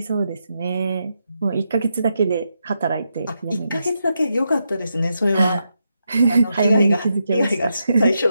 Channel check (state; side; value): inverted; both; correlation -0.84